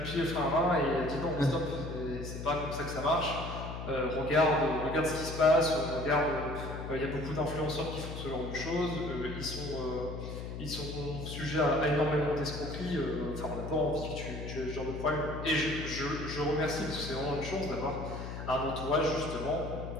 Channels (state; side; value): noise; left; hum, 7 dB below the sound